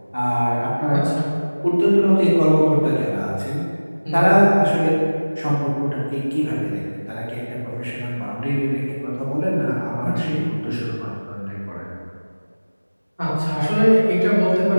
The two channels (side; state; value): both; inverted; correlation -1.00